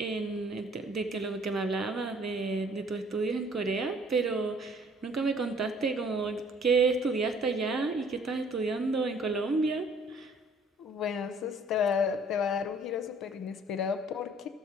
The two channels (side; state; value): both; normal; correlation 0.57